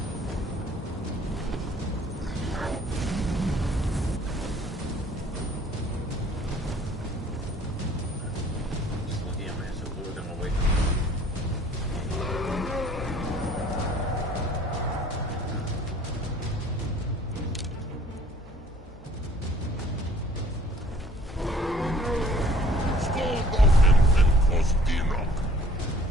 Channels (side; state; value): both; normal; correlation 0.55